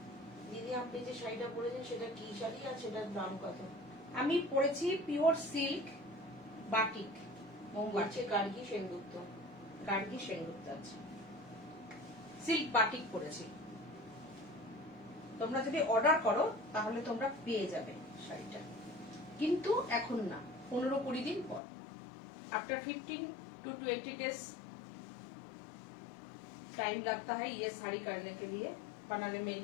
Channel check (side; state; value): right; drops out; at 21.6 s